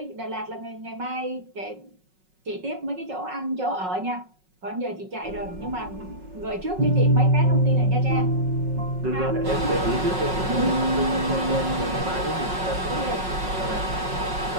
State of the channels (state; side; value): late; left; 5.4 ms